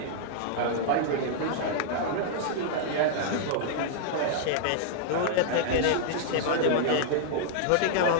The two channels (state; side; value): different; both; correlation -0.01